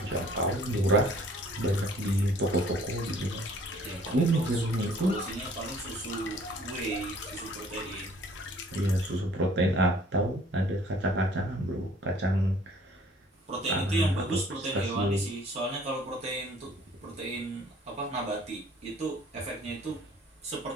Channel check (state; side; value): normal; both; correlation 0.55